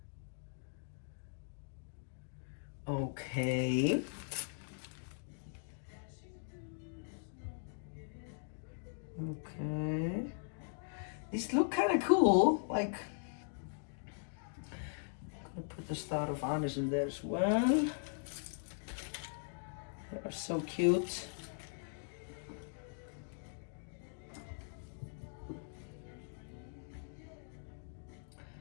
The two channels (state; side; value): silent; right; digital silence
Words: Okay. Okay. These look kind of cool. Like, I'm gonna put the star of honors in there as well. They are so cute. I